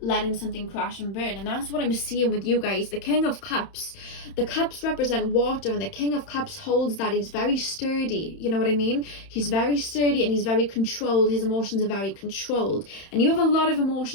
something crash and burn. And that's what I'm seeing with you guys. The King of Cups, the cups represent water, and the King of Cups holds that. He's very sturdy, you know what I mean? He's very sturdy and he's very controlled. His emotions are very controlled, and you have a lot of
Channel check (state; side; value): late; right; 31 ms